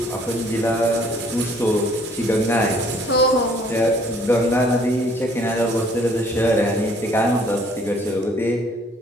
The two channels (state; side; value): normal; both; correlation 0.59